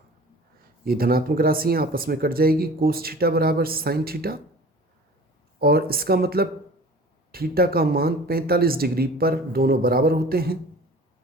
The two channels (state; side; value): normal; both; correlation 0.43